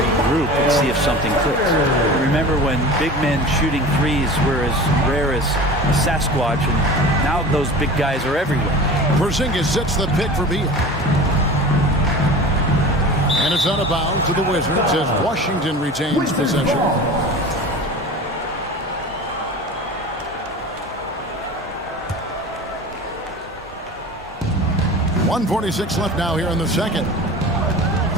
and see if something clicks. Remember when big men shooting threes were as rare as a Sasquatch, and now those big guys are everywhere. Porzingis sets the pick for Beal. And it's out of bounds to the Wizards as Washington retains possession. .146 left now here in the second.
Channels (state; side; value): normal; both; correlation 0.36